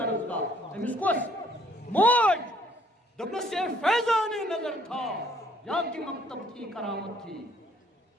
أمِس کۄس موج دوٚپنَس یہ فیضان نظر تھا یا کہ مکتب تھی کرامت تھی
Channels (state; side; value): normal; both; correlation 0.63